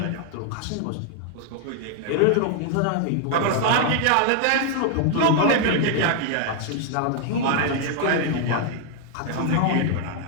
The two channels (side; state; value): both; different; correlation 0.00